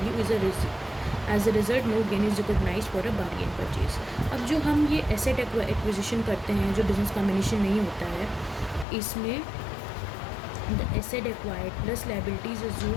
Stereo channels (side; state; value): right; drops out; at 8.8 s